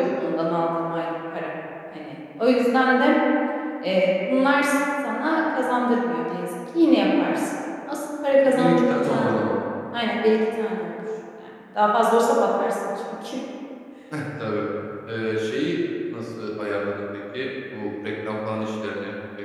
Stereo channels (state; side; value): identical; both; correlation 1.00